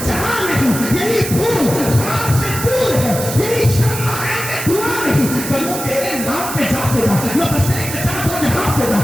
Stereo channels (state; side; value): noise; right; hiss, 7 dB below the sound